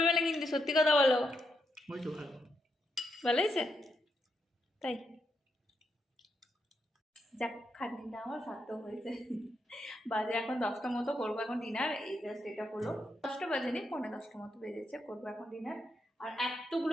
না কিন্তু, সত্যি কথা বলো। ওই তো ভালো। ভালো হয়েছে? তাই যাক, খাটনিটা আমার সার্থক হয়েছে। বাজে এখন 10টা মতো, করবো এখন ডিনার। এই জাস্ট এটা হলো 10টা বাজেনি, 9:45 মতো বেজেছে, করবো এখন ডিনার। আর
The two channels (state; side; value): normal; both; correlation 0.81